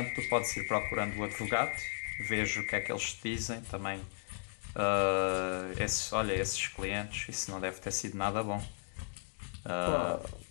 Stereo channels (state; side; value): silent; right; digital silence